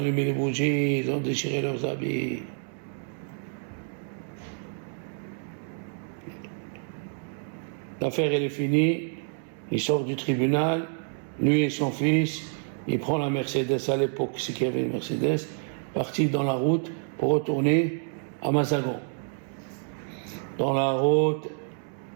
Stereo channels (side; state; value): left; silent; 59 dB below the other